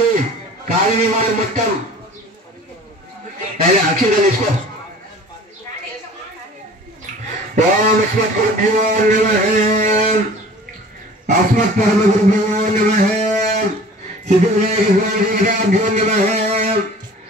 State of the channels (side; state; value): both; normal; correlation 0.45